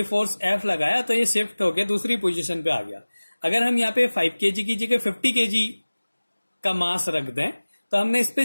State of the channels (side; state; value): both; inverted; correlation -1.00